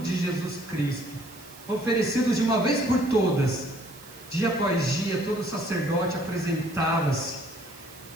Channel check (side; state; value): right; noise; hiss, 19 dB below the sound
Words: Jesus Cristo, oferecidos de uma vez por todas. Dia após dia, todo sacerdote apresentava-se